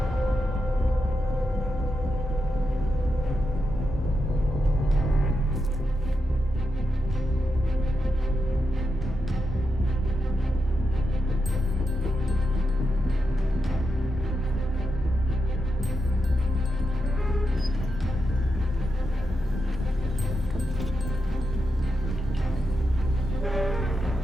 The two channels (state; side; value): normal; both; correlation 0.86